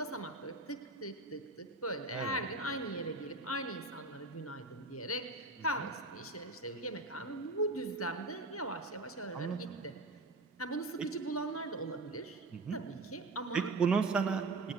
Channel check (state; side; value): quieter; left; 3.2 dB